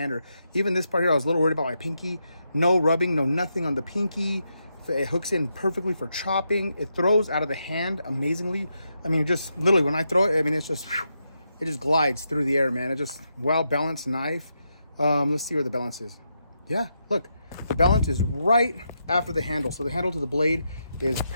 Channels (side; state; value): both; inverted; correlation -0.83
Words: Or even this part here, I was a little worried about my pinky. No rubbing, no nothing on the pinky. It hooks in perfectly for chopping. It throws out of the hand amazingly. I mean, just literally when I throw it, I mean, it's just, whew, it just glides through the air, man. It's just well-balanced knife. Let's see where the balance is. Yeah, look, the balance is right after the handle. So the handle to the blade is